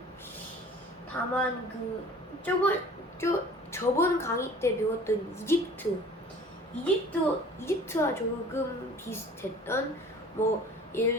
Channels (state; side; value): normal; both; correlation 0.47